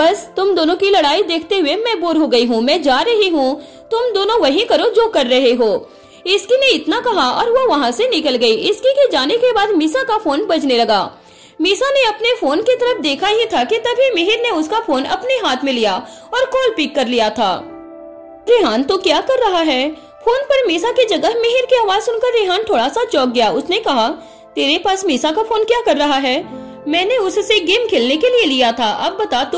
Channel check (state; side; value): identical; both; correlation 1.00